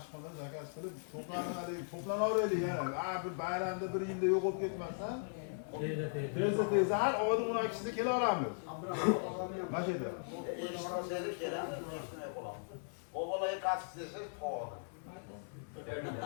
zakaz qilib to'planaveraylik yana. Bir bayramda bir yilda yo'q bo'lib ketmasdan. Tezda har oyning 12sida kela olamiz. Mana shu yerda. Eshitsangiz kelamiz, shunday bo'lamiz. O'g'illarga qattiq desiz, to'g'ri.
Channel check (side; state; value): right; silent; digital silence